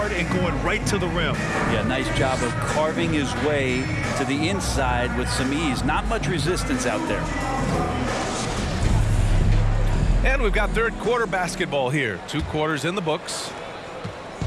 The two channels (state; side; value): identical; both; correlation 1.00